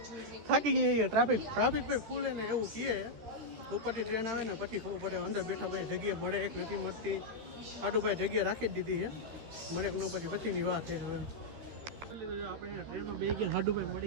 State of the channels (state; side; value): late; left; 13 ms